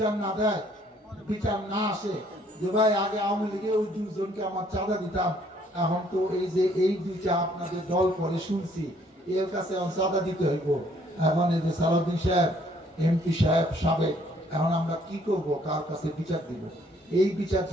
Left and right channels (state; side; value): normal; both; correlation 0.64